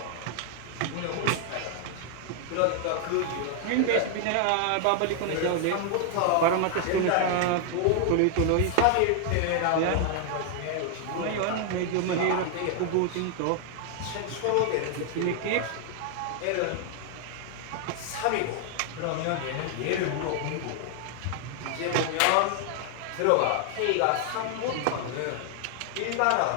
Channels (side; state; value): both; different; correlation 0.00